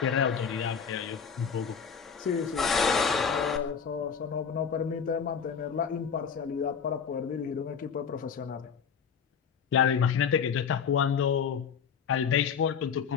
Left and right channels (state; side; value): quieter; right; 6.8 dB